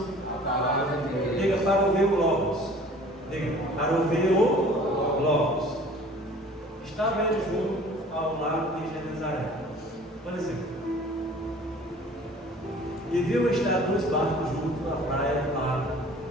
A palavra de Deus. Diga, para ouvir o Logos. Diga, para ouvir o Logos. Estava ele junto ao lago de Genezaré, por exemplo, e viu estar 2 barcos junto à praia do lago,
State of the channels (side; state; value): both; normal; correlation 0.48